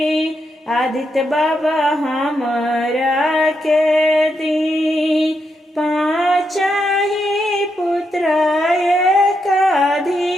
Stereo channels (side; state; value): both; normal; correlation 0.82